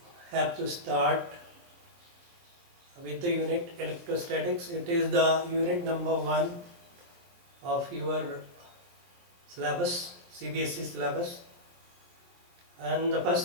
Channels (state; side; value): late; left; 23 ms